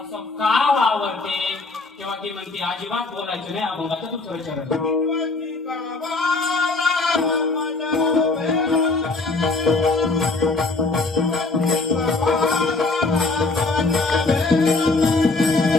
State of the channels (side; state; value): right; quieter; 3.5 dB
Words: असं का वावरते? तेव्हा ती म्हणते अजिबात बोलायचं नाही. अभंगाचं दुसरं चरण